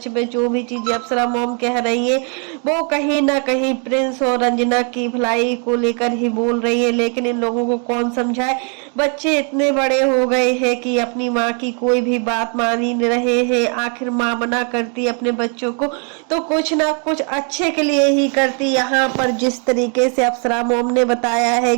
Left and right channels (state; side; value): quieter; left; 39.7 dB